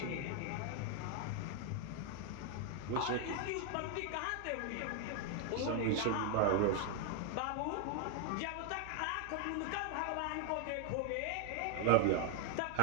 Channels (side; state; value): both; different; correlation 0.00